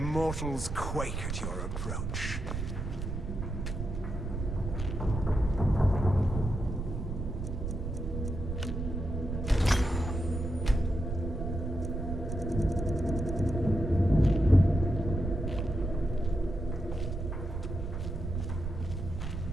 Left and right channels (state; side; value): noise; right; rumble, 4 dB below the sound